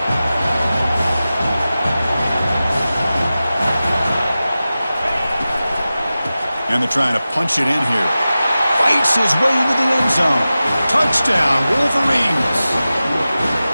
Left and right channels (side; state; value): both; inverted; correlation -0.95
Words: And they're trying to punch it in here. Fights his way into the end zone. Touchdown, Wolverines.